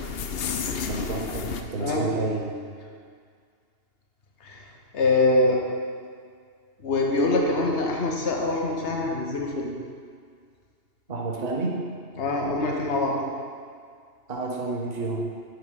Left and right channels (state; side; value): late; right; 2.8 ms